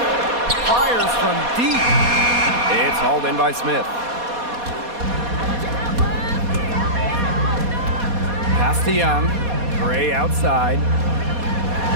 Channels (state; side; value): late; left; 4.2 ms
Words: Fires from deep. It's hauled in by Smith. Pass to Young. Gray outside.